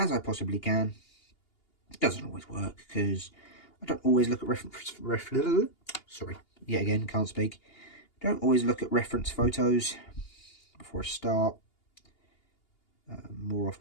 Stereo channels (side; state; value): right; late; 2.8 ms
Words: I possibly can. It doesn't always work because I don't always look at sorry, yet again, can't speak. Don't always look at reference photos before I start. More